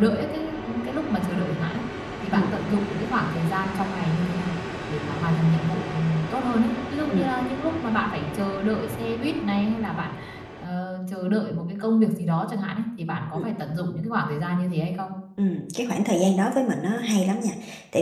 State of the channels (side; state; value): both; identical; correlation 1.00